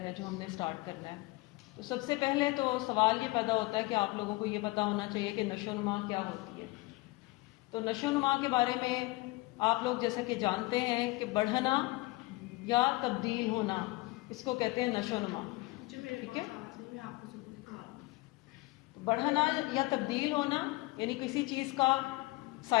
جو ہم نے سٹارٹ کرنا ہے۔ تو سب سے پہلے تو سوال یہ پیدا ہوتا ہے کہ آپ لوگوں کو یہ پتہ ہونا چاہیے کہ نشو و نما کیا ہوتی ہے۔ تو نشو و نما کے بارے میں آپ لوگ جیسا کہ جانتے ہیں کہ بڑھنا یا تبدیل ہونا، اس کو کہتے ہیں نشو و نما، ٹھیک ہے؟ بڑھنا یا تبدیل ہونا یعنی کسی چیز کا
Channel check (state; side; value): quieter; right; 22.2 dB